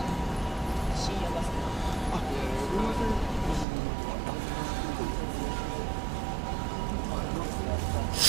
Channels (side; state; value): left; drops out; at 3.7 s